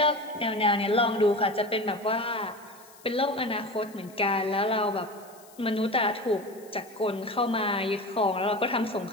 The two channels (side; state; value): left; noise; hiss, 24 dB below the sound